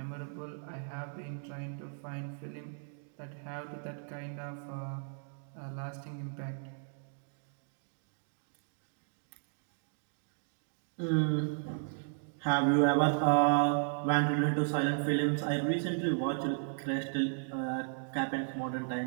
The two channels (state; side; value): silent; left; digital silence